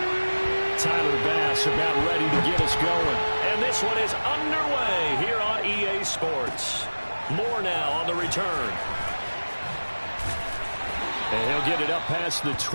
Tyler Bass about ready to get us going. And this one is underway here on EA Sports. More now on the return. And he'll get it up past the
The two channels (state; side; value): inverted; both; correlation -1.00